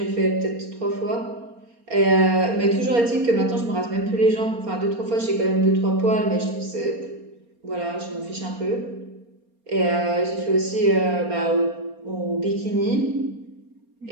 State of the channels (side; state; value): left; late; 4.3 ms